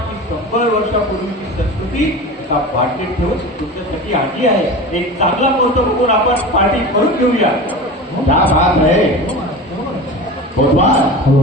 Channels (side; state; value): both; normal; correlation 0.32